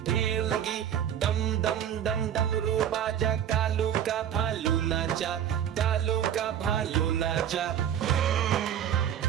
दम दम दम डमरू बाजा, कालू का भालू नाचा, कालू का भालू नाचा।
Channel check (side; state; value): left; quieter; 9.7 dB